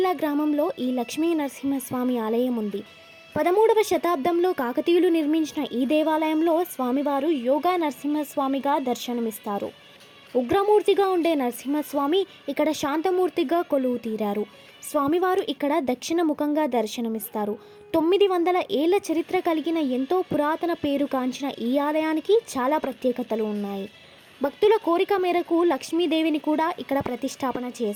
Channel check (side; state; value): both; identical; correlation 1.00